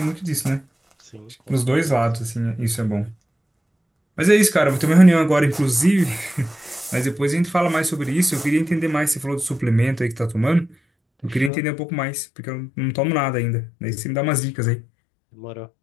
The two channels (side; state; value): right; drops out; at 11.5 s